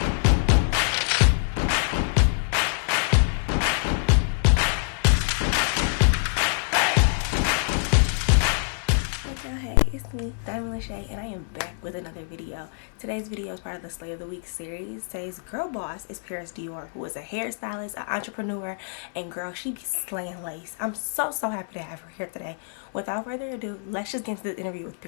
Hey, it's me, Dymond Lachey, and I am back with another video. Today's video is part of the Slay of the Week series. Today's girl boss is Paris Dior, who is a hairstylist, an entrepreneur, and girl, she be slaying lace. I'm so happy to have her here today. Without further ado, let's just get into the interview with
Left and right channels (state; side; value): silent; right; 61 dB below the other